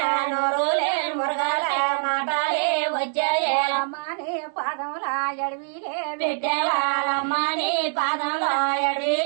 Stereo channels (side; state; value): left; silent; 59 dB below the other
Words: నోరులే మురగాల మాటాలే వచ్చాయే అమ్మాని పాదముల ఎడవిలే పెట్టేవాళ్ళమ్మని పాదంలో